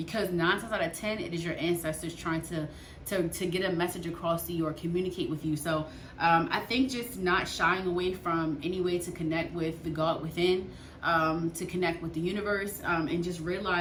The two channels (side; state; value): both; identical; correlation 1.00